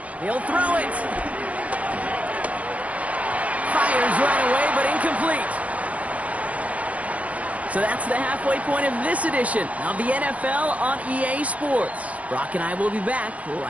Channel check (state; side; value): late; left; 0.067 ms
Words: He'll throw it. Fires right away, but incomplete. So that's the halfway point of this edition of the NFL on EA Sports. Brock and I will be back